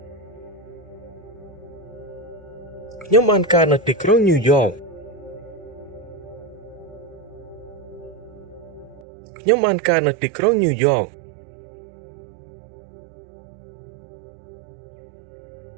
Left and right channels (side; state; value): left; drops out; at 9.1 s